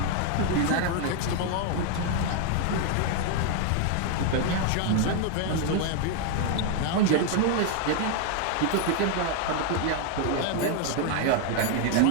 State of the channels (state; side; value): different; both; correlation 0.00